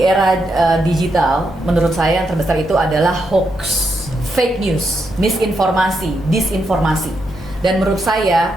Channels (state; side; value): normal; both; correlation 0.82